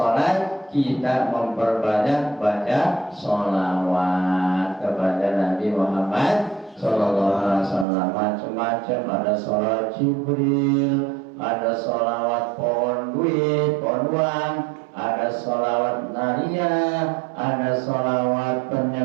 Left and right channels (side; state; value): left; drops out; at 7.9 s